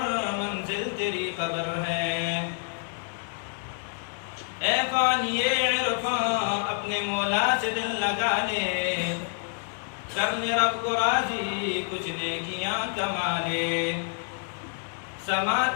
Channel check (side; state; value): right; silent; 56 dB below the other